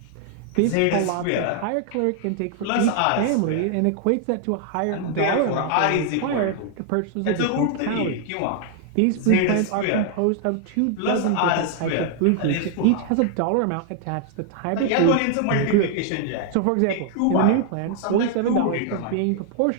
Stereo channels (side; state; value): both; different; correlation 0.00